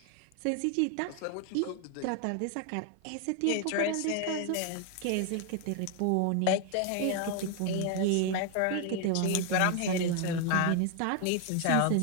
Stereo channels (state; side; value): different; both; correlation 0.01